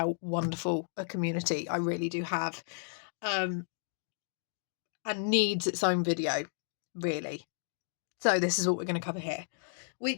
wonderful a community I really do have, and needs its own video, really. So this is what we're going to cover here.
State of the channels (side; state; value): right; silent; digital silence